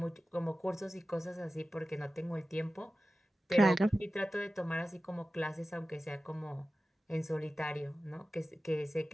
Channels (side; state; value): both; normal; correlation 0.95